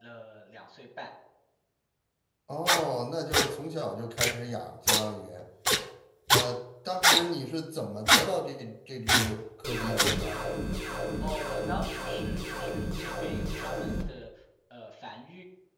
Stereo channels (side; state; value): both; identical; correlation 1.00